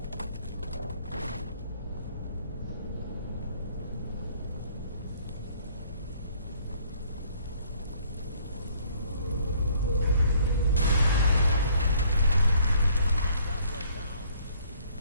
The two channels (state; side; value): inverted; both; correlation -0.61